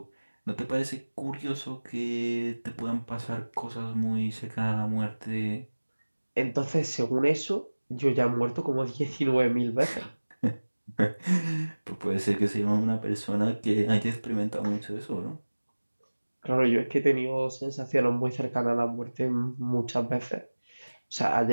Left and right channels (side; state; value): both; inverted; correlation -1.00